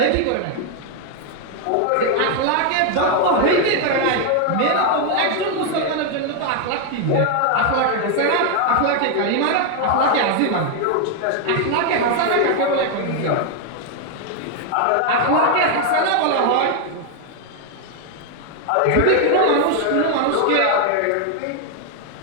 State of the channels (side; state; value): both; different; correlation 0.00